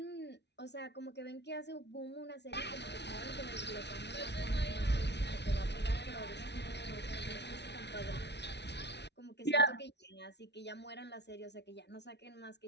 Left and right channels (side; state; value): right; late; 0.50 ms